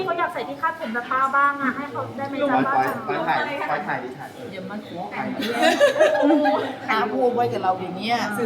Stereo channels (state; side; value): identical; both; correlation 1.00